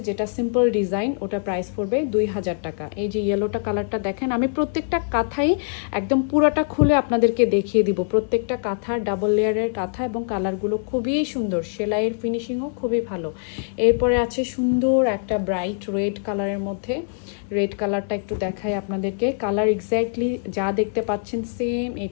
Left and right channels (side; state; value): right; silent; digital silence